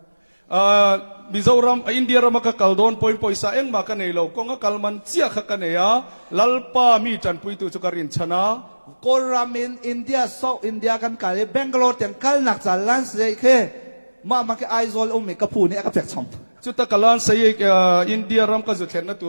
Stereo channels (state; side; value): inverted; both; correlation -1.00